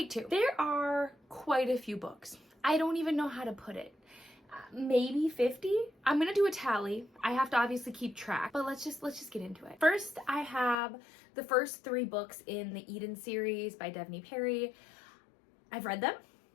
two. There are quite a few books. I don't even know how to put it. Maybe 50. I'm gonna do a tally. I have to obviously keep track, but let's just get into it. First, I have the first 3 books in the Eden series by Bethany Perry. I've read them.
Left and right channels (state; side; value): drops out; right; at 10.8 s